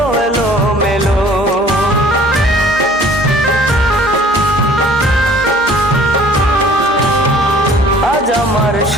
এলোমেলো। আজ আমার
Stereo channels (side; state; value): both; normal; correlation 0.52